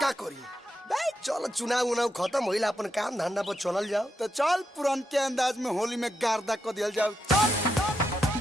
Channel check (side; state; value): both; normal; correlation 0.83